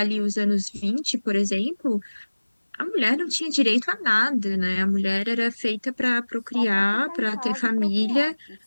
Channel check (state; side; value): inverted; both; correlation -1.00